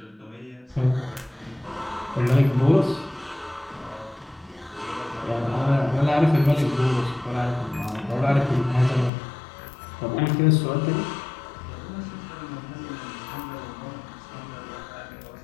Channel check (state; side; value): drops out; right; at 9.1 s